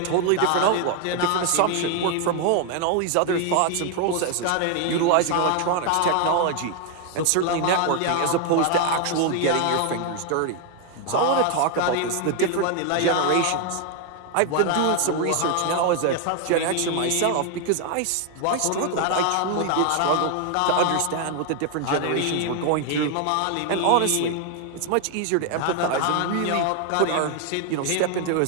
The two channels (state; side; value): different; both; correlation 0.00